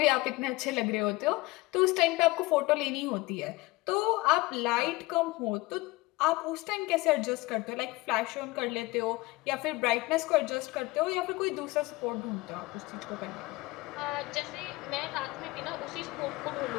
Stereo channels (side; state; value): right; quieter; 21.7 dB